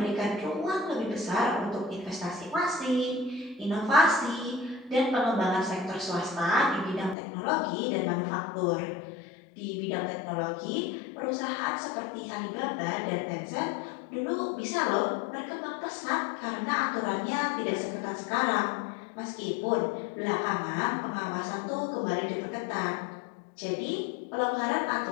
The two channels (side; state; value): right; drops out; at 7.2 s